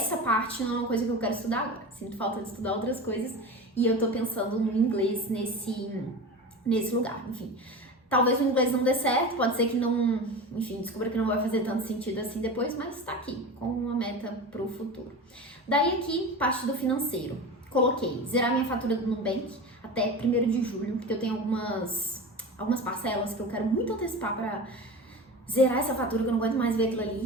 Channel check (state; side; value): normal; both; correlation 0.29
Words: parte não é uma coisa que eu quero estudar agora. Sinto falta de estudar outras coisas e eu tô pensando no inglês nesse lugar, enfim. Talvez o inglês não dê certo, pode ser que não, enfim, descubra que não vai fazer tanto sentido assim depois, mas tá aqui, com uma meta pro futuro. Daí aqui, parte do financeiro. Coloquei zerar minha fatura do Nubank até 1º de julho, porque eu tenho algumas parcelas que eu quero muito antecipar pra zerar essa fatura, que eu não aguento mais ver aquilo